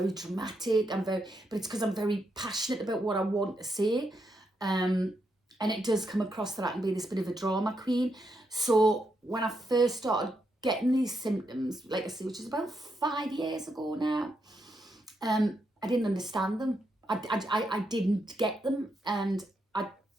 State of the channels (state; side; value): normal; both; correlation 0.81